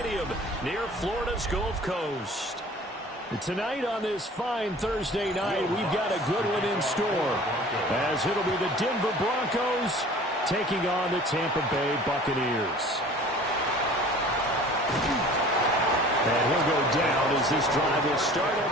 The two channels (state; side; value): normal; both; correlation 0.46